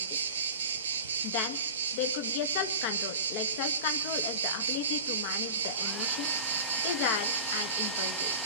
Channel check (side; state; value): both; inverted; correlation -0.33